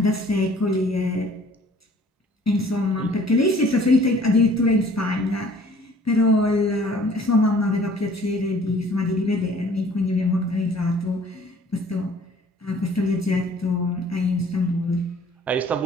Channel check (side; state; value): both; normal; correlation 0.53